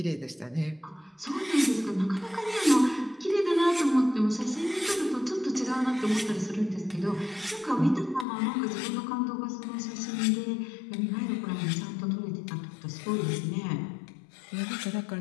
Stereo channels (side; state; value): right; drops out; at 8.2 s